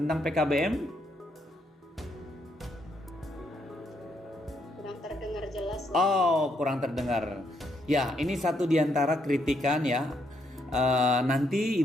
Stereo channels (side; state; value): both; normal; correlation 0.75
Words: PKBM? Kurang terdengar jelas. Oh, kurang terdengar. Ya, ini satu di antara kritikan ya. Nanti